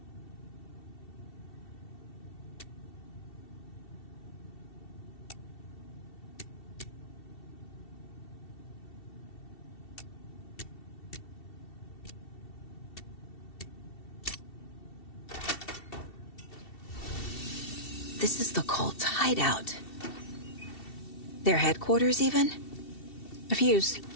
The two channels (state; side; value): late; right; 2.7 ms